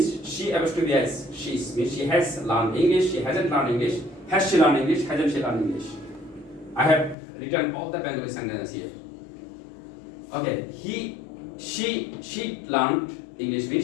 she has to be as, she means she has learned English, she hasn't learned English, has she learned English, hasn't she learned English. I have written all the Bengali sentences here. Okay, she learned English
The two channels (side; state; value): right; drops out; at 7.2 s